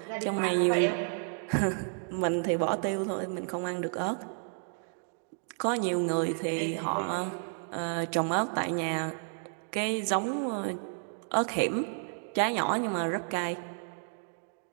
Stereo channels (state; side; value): silent; left; 57 dB below the other